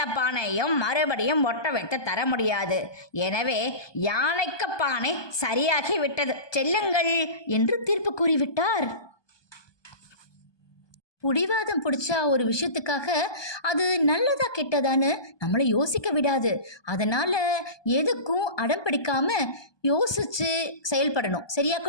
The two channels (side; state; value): right; late; 1.2 ms